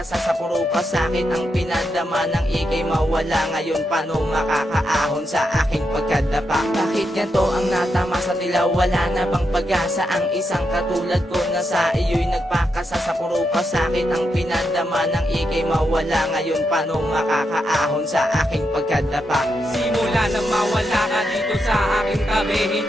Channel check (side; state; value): both; normal; correlation 0.84